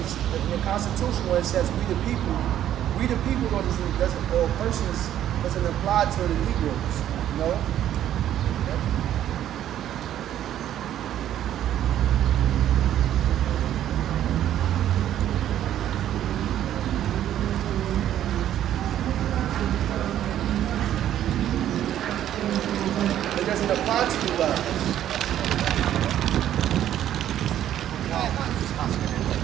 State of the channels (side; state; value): left; quieter; 11.4 dB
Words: the Constitution where it says we the people though doesn't or persons doesn't apply to the Negroes, you know? Yep. It doesn't apply to you guys.